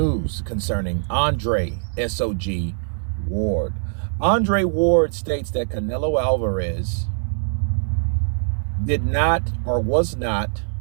concerning Andre SOG Ward. Andre Ward states that Canelo Alvarez did not or was not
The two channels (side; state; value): left; silent; digital silence